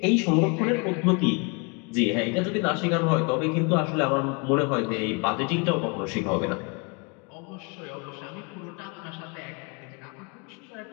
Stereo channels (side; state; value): right; quieter; 32.0 dB